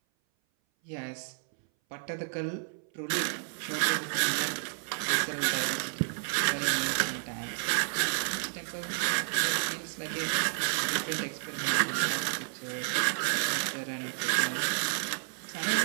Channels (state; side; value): silent; left; 57 dB below the other